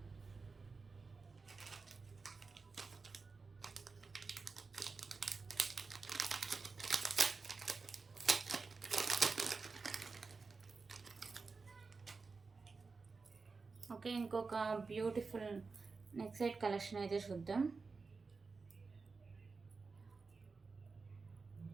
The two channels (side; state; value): left; quieter; 4.4 dB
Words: Okay, ఇంకొక బ్యూటిఫుల్ నెక్ సెట్ కలెక్షన్ అయితే చూద్దాం.